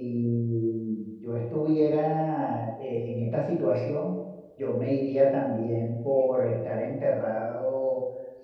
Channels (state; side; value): identical; both; correlation 1.00